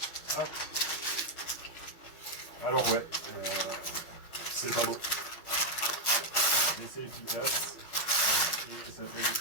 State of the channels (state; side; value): late; right; 5.9 ms